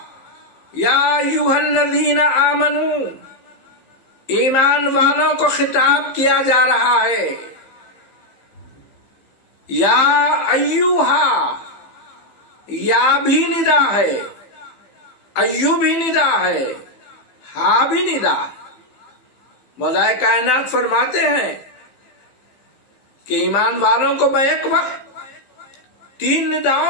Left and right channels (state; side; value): late; right; 15 ms